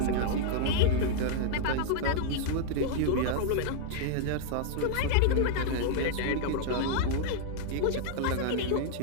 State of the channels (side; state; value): both; different; correlation -0.01